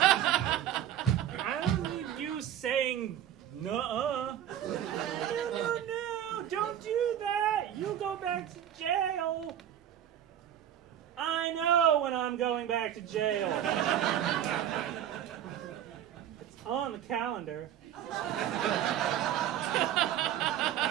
don't need you saying, nuh-uh. No, don't do that. You go back to jail. I know when I'm going back to jail. It's on the calendar.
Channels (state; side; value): quieter; left; 10.7 dB